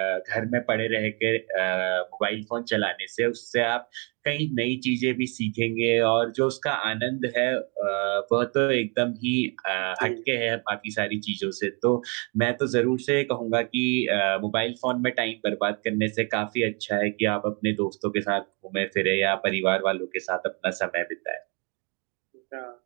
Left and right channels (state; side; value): quieter; left; 34.5 dB